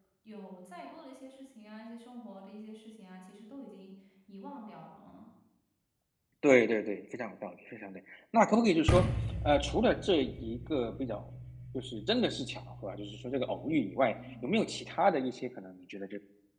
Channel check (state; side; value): identical; both; correlation 1.00